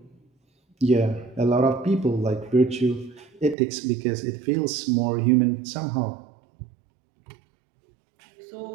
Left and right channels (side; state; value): left; drops out; at 3.6 s